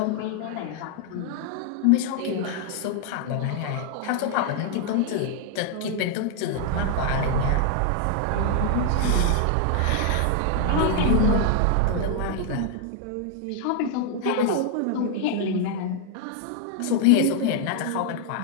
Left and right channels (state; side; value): different; both; correlation 0.00